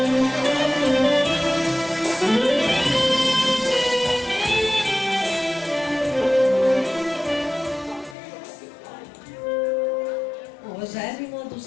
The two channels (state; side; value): drops out; right; at 8.2 s